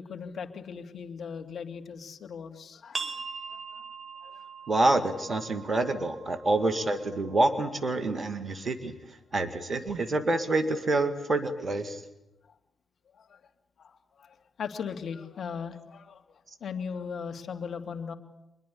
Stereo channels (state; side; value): normal; both; correlation 0.84